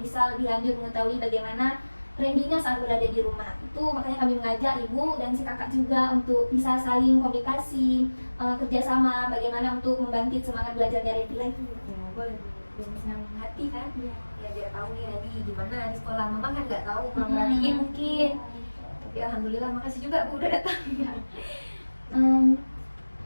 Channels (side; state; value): both; inverted; correlation -1.00